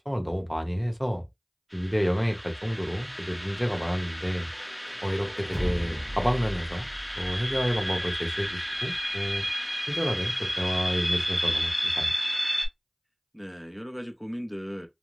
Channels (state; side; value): identical; both; correlation 1.00